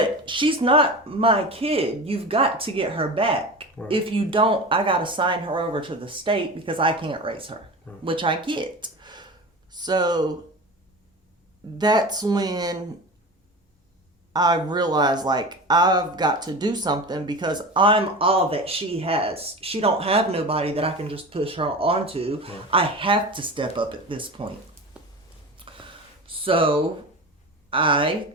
she's not my kid. You've got to get her back. Right. If you don't, I got to sign her over to the state because I can't raise her, which I get. So that's when I realized, like, I've got to do something because I'm all that she has. She don't have nobody that I can just push her onto. Right. I have to step up at this point. So I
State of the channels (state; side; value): normal; both; correlation 0.30